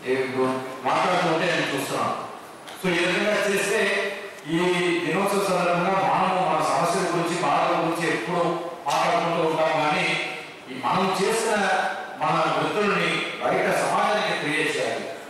మాట్లాడుతుంటే నేను చూస్తున్నాను. సో ఈ విధంగా చేస్తే ఈ దినోత్సవ సందర్భంగా మన సమస్యల గురించి బాధల గురించి ఎప్పుడు మాట్లాడుకుంటూ ఉంటాం. కానీ మనం చేసిన మన వృత్తుల్ని బయట సమాజానికి క్రియేట్ చేయాలి.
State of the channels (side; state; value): both; identical; correlation 1.00